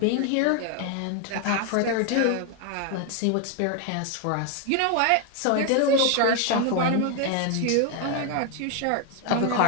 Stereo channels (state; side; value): different; both; correlation 0.01